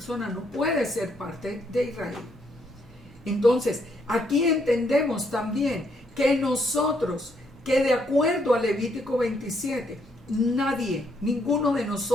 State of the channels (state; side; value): normal; both; correlation 0.73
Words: no puede ser parte de Israel. Entonces, aquí entendemos también que nosotros, que de acuerdo a Levítico 27, ninguno de